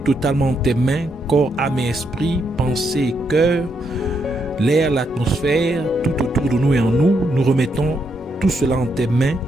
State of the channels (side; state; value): both; normal; correlation 0.79